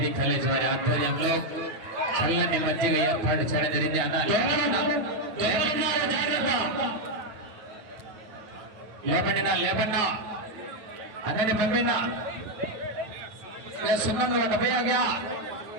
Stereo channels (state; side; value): late; left; 9.4 ms